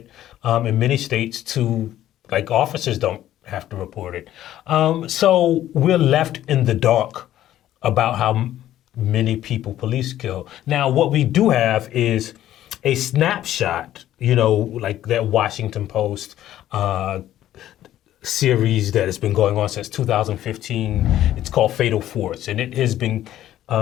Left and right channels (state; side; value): quieter; right; 12.7 dB